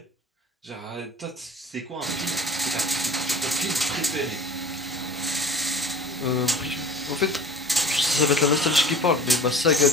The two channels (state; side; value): normal; both; correlation 0.41